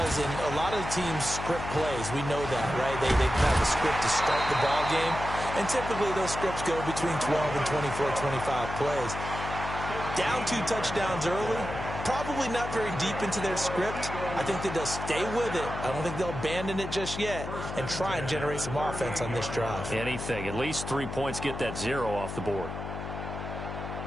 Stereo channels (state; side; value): noise; left; hum, 7 dB below the sound